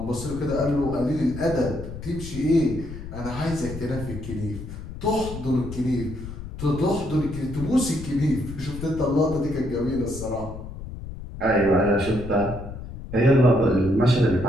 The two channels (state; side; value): noise; left; rumble, 10 dB below the sound